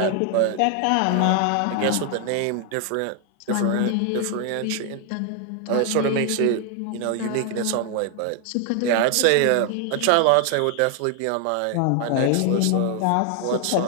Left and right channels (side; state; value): both; different; correlation 0.00